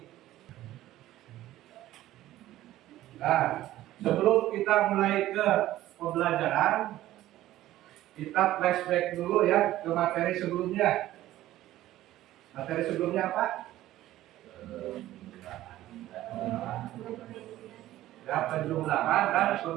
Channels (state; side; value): quieter; left; 14.7 dB